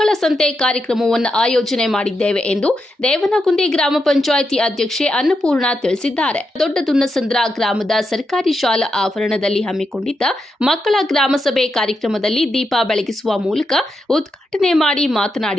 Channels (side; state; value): both; normal; correlation 0.85